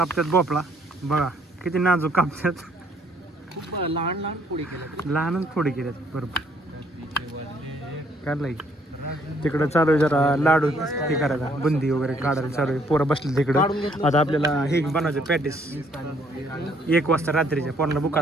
भोपळा. बघा किती नाजूक कापतात. लहान लहान पोळी केल्या, लहानच फोडी केल्यात. बरोबर काढलाय. तिकडं चालू आहे जरा लाडू हे करायला, बुंदी वगैरे काढायला चालू आहे. पोरं बसले तिकडं. आता आपल्याला हे बनवायचं पॅटीस. 1 वाजता रात्रीच्या पोरांना बुका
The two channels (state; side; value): normal; both; correlation 0.65